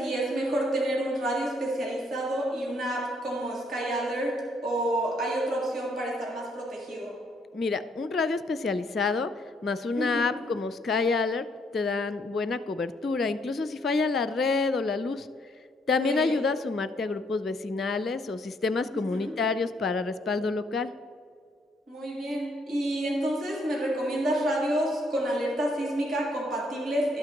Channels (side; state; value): both; normal; correlation 0.70